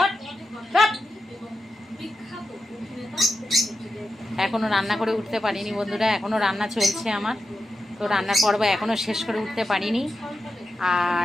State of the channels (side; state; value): both; normal; correlation 0.89